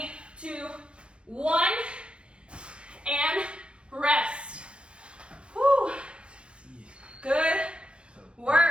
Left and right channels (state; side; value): late; left; 0.057 ms